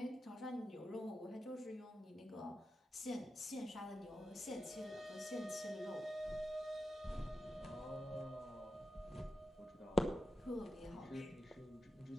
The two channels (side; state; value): both; normal; correlation 0.90